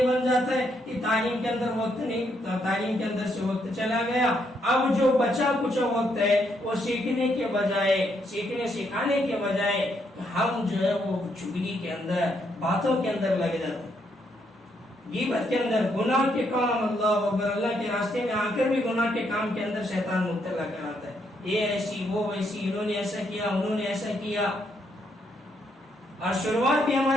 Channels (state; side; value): normal; both; correlation 0.75